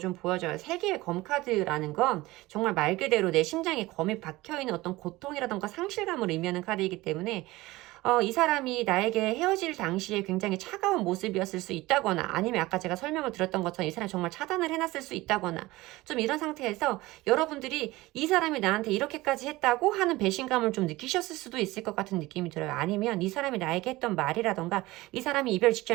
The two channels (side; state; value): left; quieter; 19.4 dB